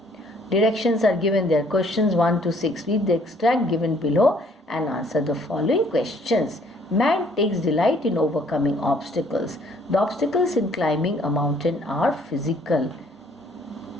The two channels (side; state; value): both; normal; correlation 0.61